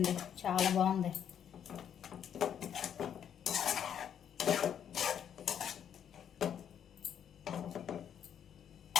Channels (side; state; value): right; quieter; 8.9 dB